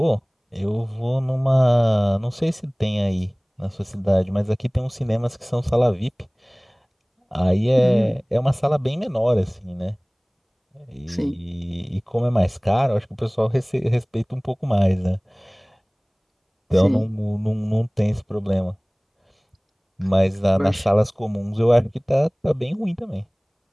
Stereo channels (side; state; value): both; identical; correlation 1.00